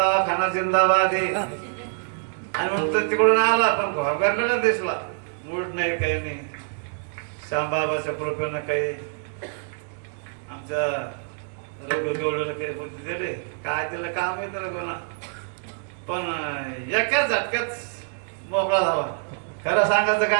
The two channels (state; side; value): silent; left; 58 dB below the other